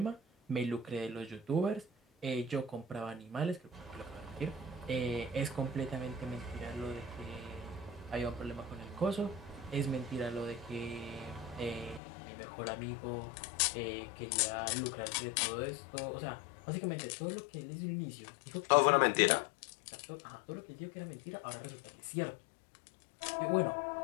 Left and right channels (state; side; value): drops out; right; at 12.0 s